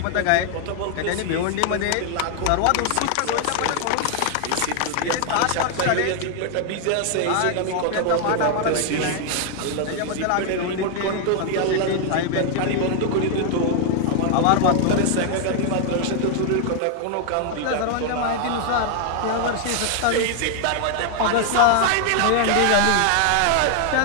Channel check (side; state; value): both; different; correlation 0.00